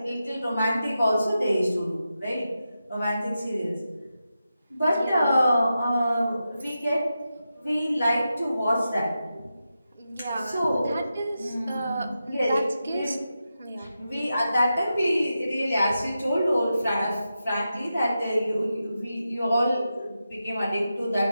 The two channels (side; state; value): both; inverted; correlation -0.90